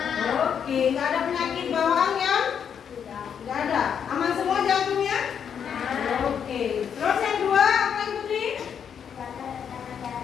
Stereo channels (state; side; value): quieter; right; 7.8 dB